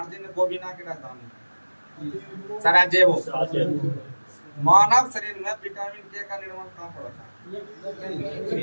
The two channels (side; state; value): both; inverted; correlation -1.00